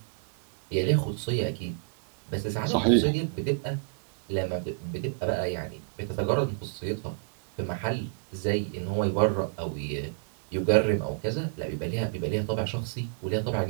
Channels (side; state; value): left; silent; digital silence